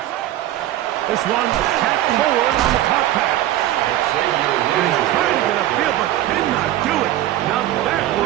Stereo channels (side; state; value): left; quieter; 13.8 dB